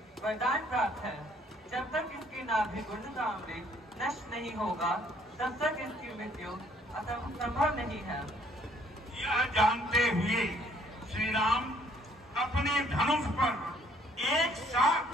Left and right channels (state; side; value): normal; both; correlation 0.63